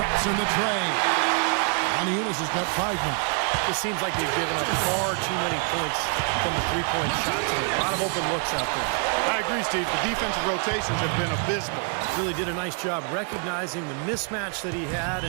in the tray. Monty Eunice has got 5 now. It seems like they've given up far too many points from the three-point shot today. A lot of open looks out there. I agree, Steve. The defensive rotations have been abysmal. Really did a nice job recognizing the mismatch that he had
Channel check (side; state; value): left; quieter; 39.6 dB